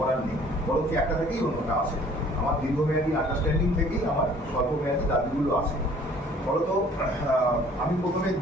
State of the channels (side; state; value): both; normal; correlation 0.54